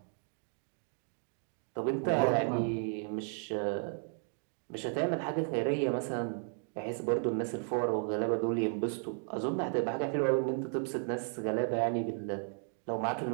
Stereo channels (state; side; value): silent; left; 55 dB below the other